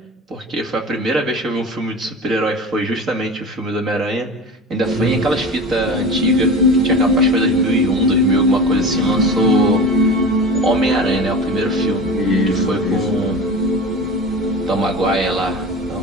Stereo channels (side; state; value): both; normal; correlation 0.32